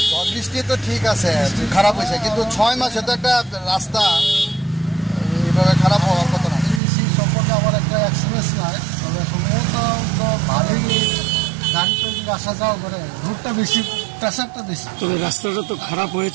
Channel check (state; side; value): drops out; left; at 6.8 s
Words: ঝড় বৃষ্টি তো ঠিক আছে, খারাপ হয়েছে, কিন্তু 6 মাসে তো একটা রাস্তা এইভাবে খারাপ হওয়ার কথা না। সেই সম্পর্কে আমার একটা এক্সপিরিয়েন্স নাই, তবে সম্ভবত তো ভালোই গাড়ি তো আসা যাওয়া করে, রোডটা বেশি, প্রেশারটা বেশি। তবে রাস্তাটা তো খারাপ